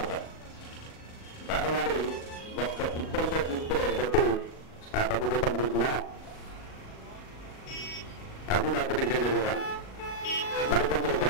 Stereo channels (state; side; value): late; right; 38 ms